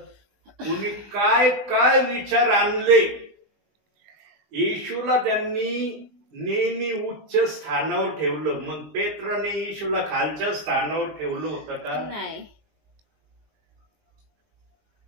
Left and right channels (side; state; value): left; late; 20 ms